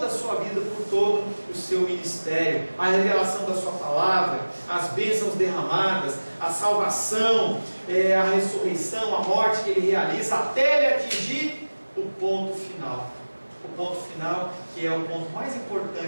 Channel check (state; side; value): inverted; both; correlation -1.00